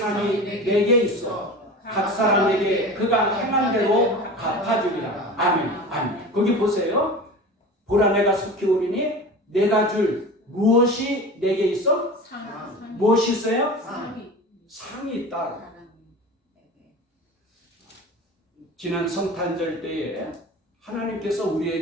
내게 있어 각 사람에게 그가 행한 대로 갚아주리라. 아멘. 아멘. 거기 보세요. 보라 내가 속히 오리니 내가 줄 무엇이 내게 있어? 무엇이 있어요? 상이 있다. 지난 성탄절 때에 하나님께서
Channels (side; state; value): both; normal; correlation 0.34